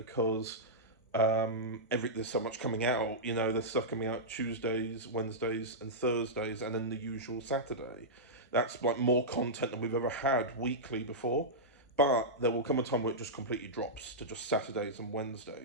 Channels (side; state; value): both; normal; correlation -0.12